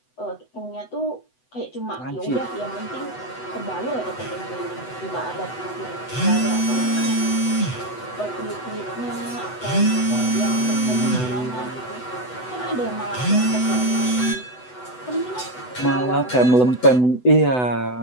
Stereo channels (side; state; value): right; late; 8.0 ms